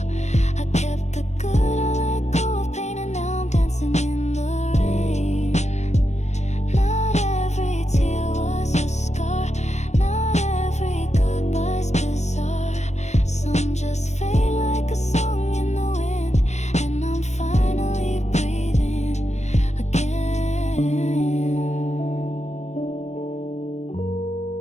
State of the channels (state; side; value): late; right; 0.33 ms